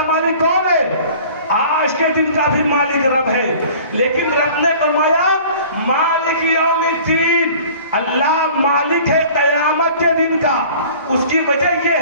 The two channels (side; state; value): both; inverted; correlation -0.47